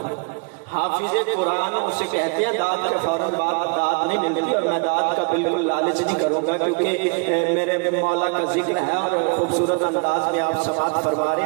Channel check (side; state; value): left; quieter; 34.1 dB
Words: حافظ قرآن اسے کہتے ہیں داد کے فوراً بعد داد نہیں ملتی، اور میں داد کا بالکل لالچ نہیں کروں گا کیونکہ میرے مولا کا ذکر ہے اور خوبصورت انداز میں آپ سماعت فرما رہے